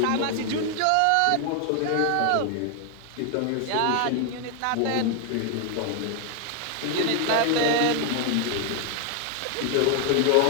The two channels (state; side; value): different; both; correlation 0.00